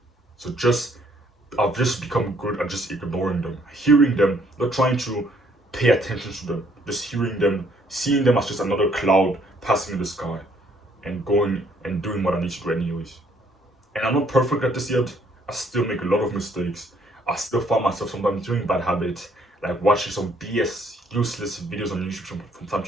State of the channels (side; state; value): both; normal; correlation 0.65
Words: So I've just become good at just ignoring them, hearing them, not trying to pay attention to them, just hearing them, seeing them as just another cloud passing in the sky, and going and doing what I need to do anyways. And I'm not perfect at this yet. I still make a lot of mistakes. I still find myself sometimes doing bad habits, like watching some BS, useless videos on YouTube from time